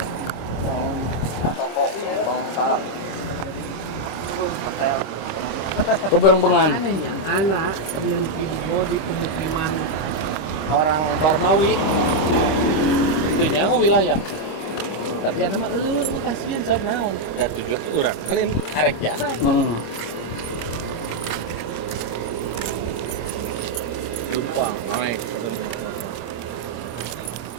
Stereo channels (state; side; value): late; right; 26 ms